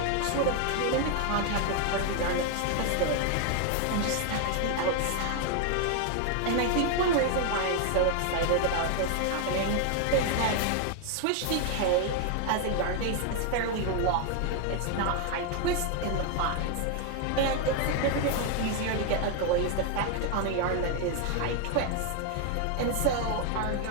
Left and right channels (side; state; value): both; different; correlation 0.00